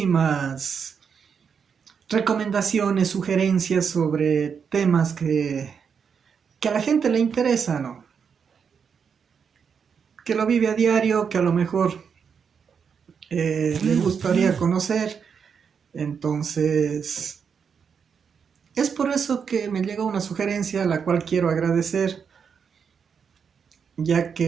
recomendaciones, sugerencias sobre temas que a la gente le interesa, ¿no? Que lo vive a diario, que a lo mejor le gustaría conocer. Entonces, es por eso que me llegó una sugerencia a la cual quiero agradecer, ya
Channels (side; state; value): left; quieter; 6.6 dB